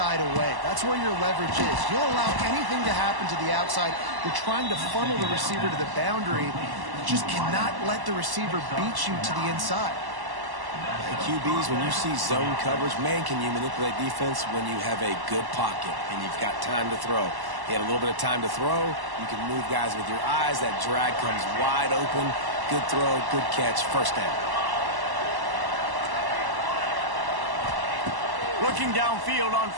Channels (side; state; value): left; late; 1.1 ms